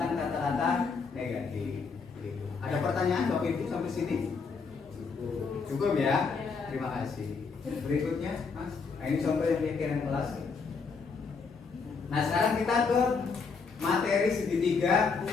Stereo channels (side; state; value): right; quieter; 5.0 dB